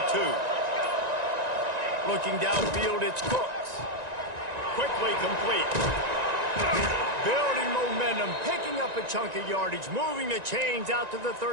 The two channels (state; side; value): late; left; 1.9 ms